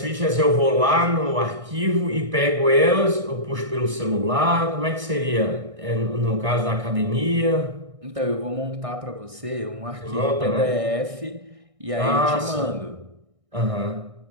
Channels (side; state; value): left; late; 1.6 ms